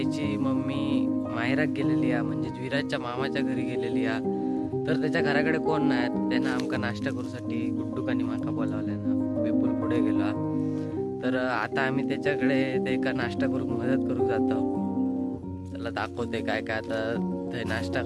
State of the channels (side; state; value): both; identical; correlation 1.00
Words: मम्मी माहेरात गेलेली आहे, म्हणजे विराजच्या मामाच्या घरी गेलेली आहे. तर त्याच्या घराकडे कोण नाही, त्यानं आमका नाश्ता करूसाठी गुड्डूकानी माका बोलावल्यानं विपुल पुढे गेला. तर आता आम्ही त्याच्याकडे ते का नाश्ता करू मदत करू जातो. त्याला दाखवते काय काय आता ते नाश्ता